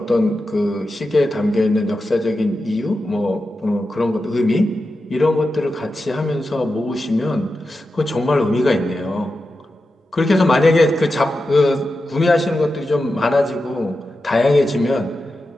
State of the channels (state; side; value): normal; both; correlation 0.91